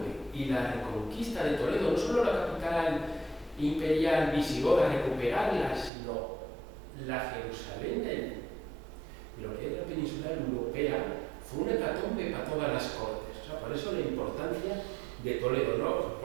y la reconquista de Toledo, no solo la capital imperial visigoda, recuperarla, sino la Jerusalén de lo que es la península europea, fue una hecatombe para todas las cortes. O sea, por eso la importancia de Toledo, ¿no?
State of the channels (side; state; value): left; drops out; at 5.9 s